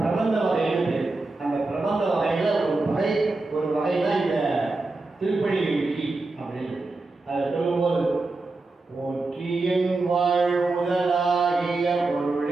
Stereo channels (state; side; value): quieter; left; 3.3 dB